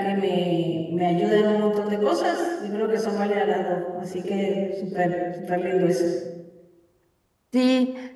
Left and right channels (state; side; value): identical; both; correlation 1.00